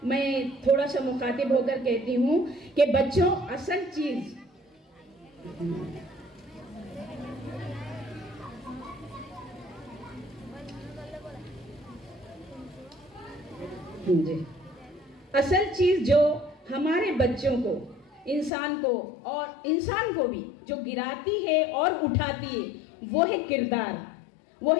मैं थोड़ा सा मुखातिब होकर कहती हूँ कि बच्चों, असल चीज असल चीज जो हमारे बच्चों को, इंसान को, और इंसान को भी जो गिराती है और उठाती है, वो है किरदार, वो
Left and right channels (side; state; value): right; drops out; at 18.5 s